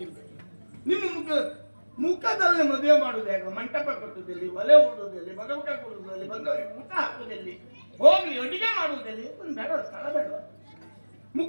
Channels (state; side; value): inverted; both; correlation -1.00